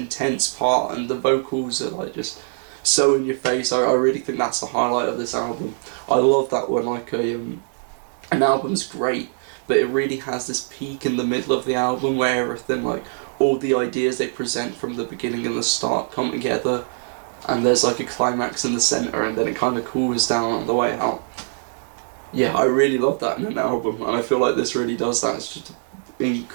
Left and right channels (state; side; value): silent; left; digital silence